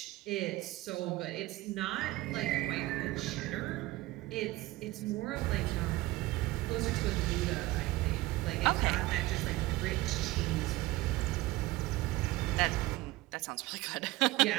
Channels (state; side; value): quieter; left; 18.8 dB